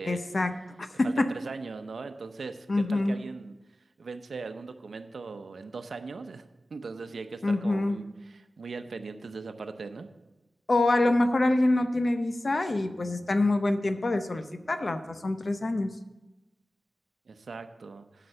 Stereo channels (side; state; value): both; normal; correlation 0.96